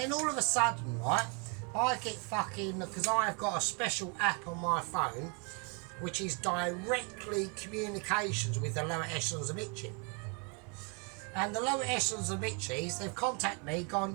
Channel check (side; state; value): left; quieter; 35.0 dB